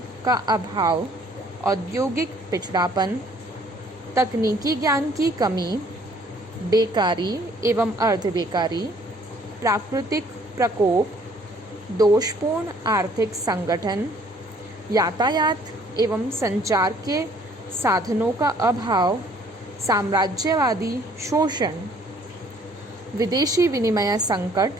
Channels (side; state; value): both; normal; correlation 0.59